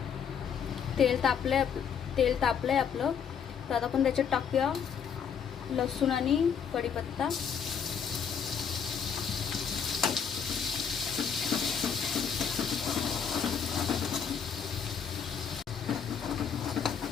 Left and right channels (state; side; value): quieter; right; 7.2 dB